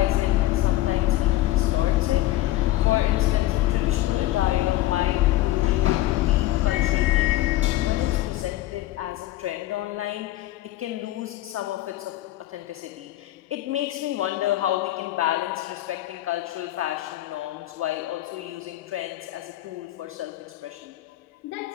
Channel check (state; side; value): quieter; right; 15.7 dB